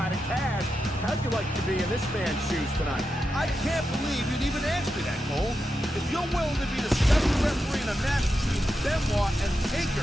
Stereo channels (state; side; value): normal; both; correlation 0.88